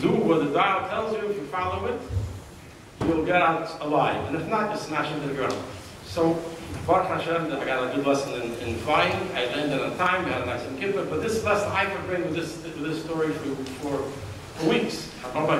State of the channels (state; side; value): identical; both; correlation 1.00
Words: what the dial tells you, if you follow it, you'll get out alive. And if not, you smash into the ground. So Baruch Hashem, I got a good lesson in flying. I landed on time. We had a nice kippur. But this lesson I could bring with this story for weeks. I brought